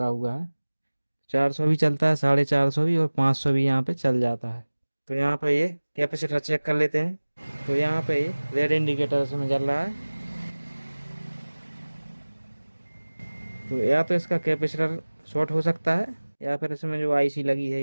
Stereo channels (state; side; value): inverted; both; correlation -1.00